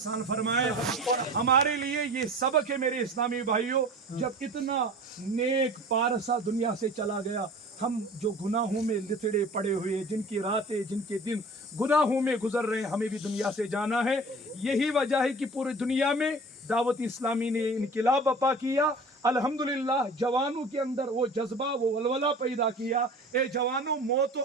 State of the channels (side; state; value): both; normal; correlation 0.41